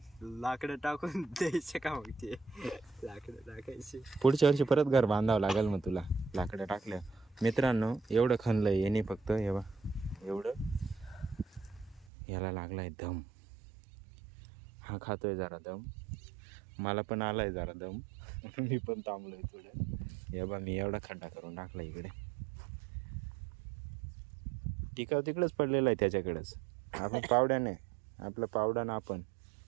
लाकडं टाकून द्यायचे का मग? ते लाकडं टाकायचे. पुढच्या वर्षी परत घर बांधावं लागेल मग तुला लाकडं टाकल्या. मित्रांनो एवढं खणलंय येणे फक्त, हे बा एवढं. याला लागलाय दम, हा खातोय जरा दम, मला पण आलाय जरा दम. मी पण थांबलोय थोडं. हे बा मी एवढा खड्डा करून टाकला इकडे. टिकाव तिकडेच पडलेला आहे त्याच्याकडेच. आपण पावड्याने, आपलं पावडानं आपण.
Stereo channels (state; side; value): drops out; left; at 12.1 s